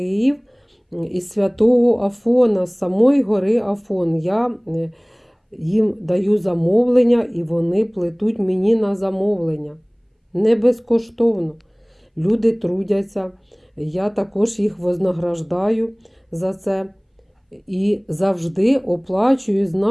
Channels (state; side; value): identical; both; correlation 1.00